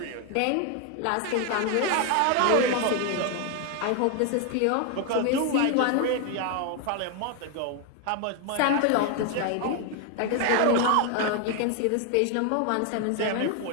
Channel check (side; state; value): both; different; correlation 0.01